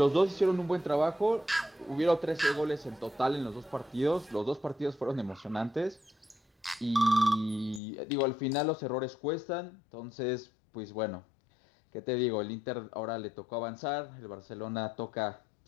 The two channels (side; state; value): right; drops out; at 7.8 s